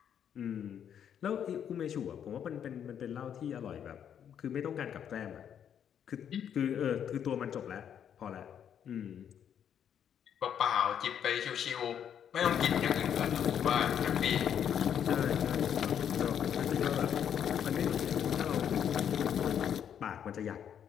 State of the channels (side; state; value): right; quieter; 8.8 dB